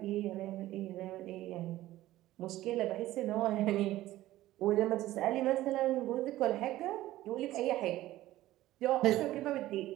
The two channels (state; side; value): quieter; left; 15.5 dB